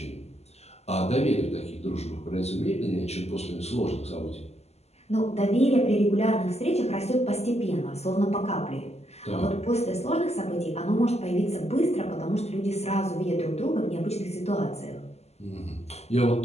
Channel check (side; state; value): right; late; 0.30 ms